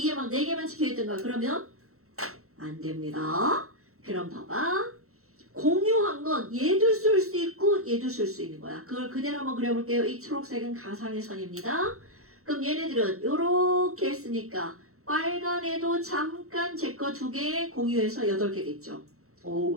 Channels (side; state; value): left; late; 0.63 ms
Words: 막 4개만 찍혀 있던가 그러면 안 됩니다. 그럼 봐봐. 공유한 건 얘도 쓸 수 있고 얘도 쓸 수 있는 거야. 그걸 그대로 한번 그려볼게요. 이 초록색은 가상의 선입니다. 그럼 얘네들은 이렇게 했으니까 빨간 애도 잠깐 제 거 2개 공유해서 8개 됐죠.